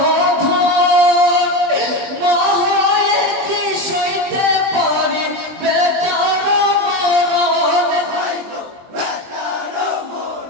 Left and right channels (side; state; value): left; late; 23 ms